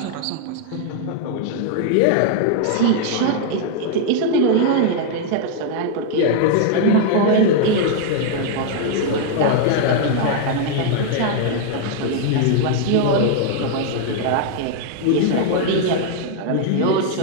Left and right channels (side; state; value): both; different; correlation 0.00